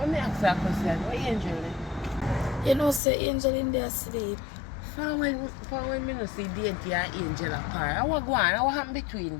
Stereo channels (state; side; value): drops out; right; at 3.0 s